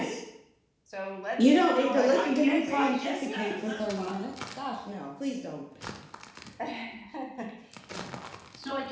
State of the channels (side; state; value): both; identical; correlation 1.00